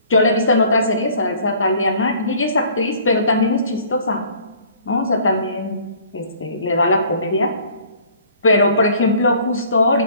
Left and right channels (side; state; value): both; inverted; correlation -0.54